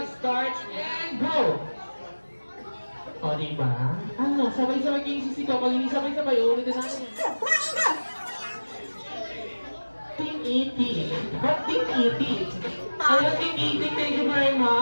starts, and go! O, diba? Ano, sabay-sabay kayong sisigaw. Pag hindi sabay-sabay, ulitin natin. Team E.T. Ba't Team E.T.? Hello, Team E.T. Thank you very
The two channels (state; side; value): inverted; both; correlation -1.00